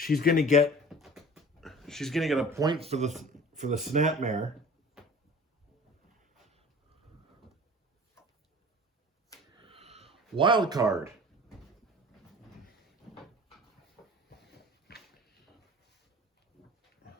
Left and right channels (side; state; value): both; normal; correlation 0.43